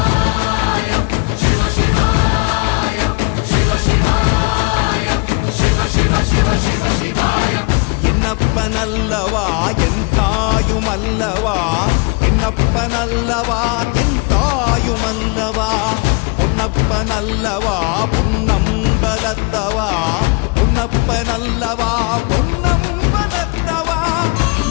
என்னப்பனல்லவா என் தாயுமல்லவா, என்னப்பனல்லவா என் தாயுமல்லவா, பொன்னப்பனல்லவா பொன்னம்பலத்தவா, பொன்னப்பனல்லவா பொன்னம்பலத்தவா.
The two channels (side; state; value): right; quieter; 30.6 dB